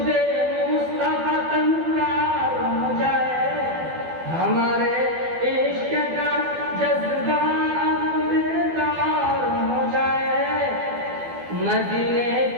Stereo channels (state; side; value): late; left; 12 ms